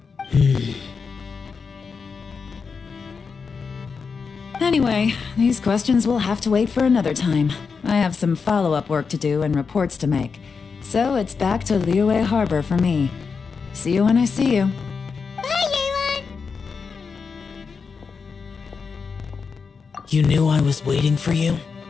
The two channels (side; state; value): right; quieter; 5.4 dB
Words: Anyway, these questions will have to wait for another time. I have some follow-up work to do and reports to make. So it's back to Liyue Harbor for me. See you when I see you. Bye, Yelan! You knew I was waiting for you?